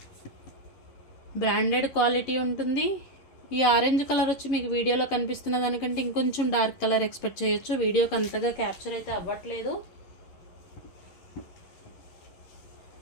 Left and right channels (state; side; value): late; right; 11 ms